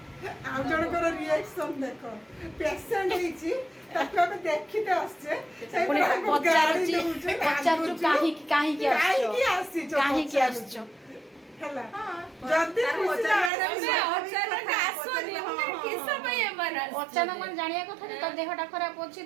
आउ जनकर रिएक्शन देख पेशेंट होइछि ताको हम देखिते आछे पुणी पचारु काहे की आछो हला जल्दी अचानक मन जानिया कथा जे तो देहटा खराब होछि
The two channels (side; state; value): left; drops out; at 13.5 s